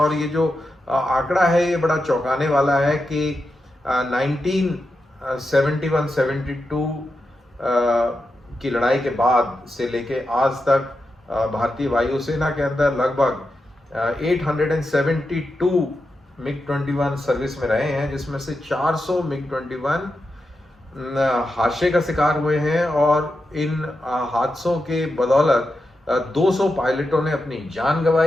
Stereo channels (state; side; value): normal; both; correlation 0.88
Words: ये जो आंकड़ा है ये बड़ा चौंकाने वाला है कि 1971-72 की लड़ाई के बाद से लेके आज तक भारतीय वायुसेना के अंदर लगभग 872 MiG-21 सर्विस में रहे हैं, जिसमें से 400 MiG-21 हादसे का शिकार हुए हैं। और इन हादसों के बदौलत 200 पायलटों ने अपनी जान